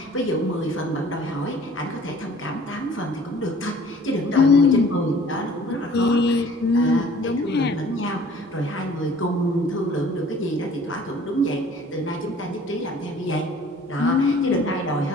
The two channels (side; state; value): both; normal; correlation 0.51